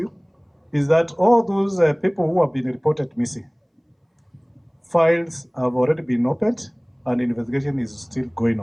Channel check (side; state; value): both; identical; correlation 1.00